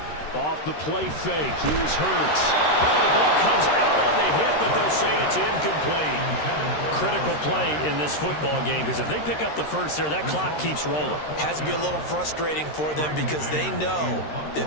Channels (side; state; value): right; late; 13 ms